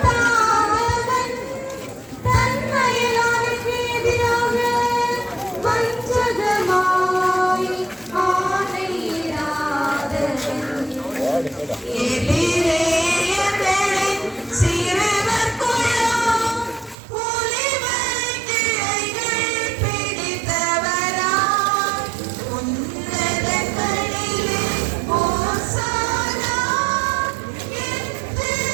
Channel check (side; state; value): left; drops out; at 16.9 s